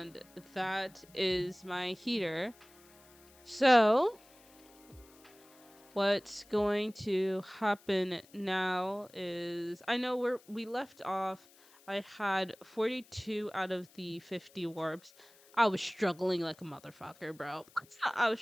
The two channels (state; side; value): noise; left; hiss, 26 dB below the sound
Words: that is my heater. So what's going to happen now is, I know we left off. I had 42 out of the 50 warps. I was struggling like a motherfucker, bro. I was